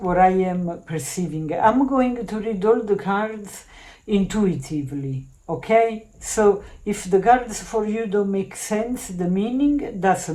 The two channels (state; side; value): identical; both; correlation 1.00